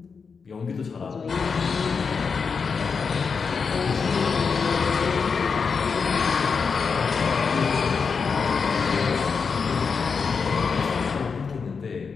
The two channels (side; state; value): right; quieter; 5.5 dB